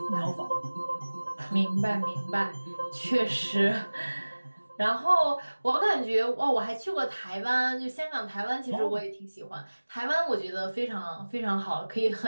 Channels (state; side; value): inverted; both; correlation -1.00